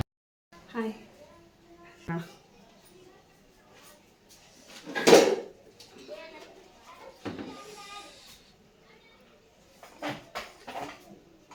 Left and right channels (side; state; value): both; identical; correlation 1.00